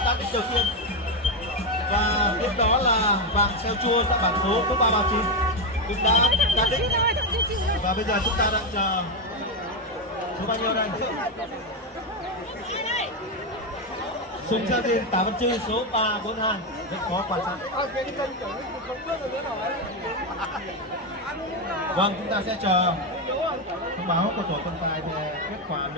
cán đích đầu tiên. Và tiếp đó là vàng xeo chua tại bảng số 339 cũng đã cán đích. Và bây giờ chúng ta đang chờ số bao nhiêu đây? Sùng Sa Diên Tả Văn Trư số 342 rất khó quan sát. Vâng, chúng ta sẽ chờ thông báo của tổ trọng tài về kết quả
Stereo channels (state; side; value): normal; both; correlation 0.08